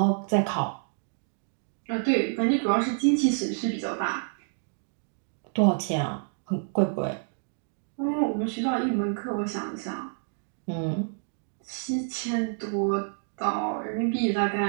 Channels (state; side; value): silent; left; digital silence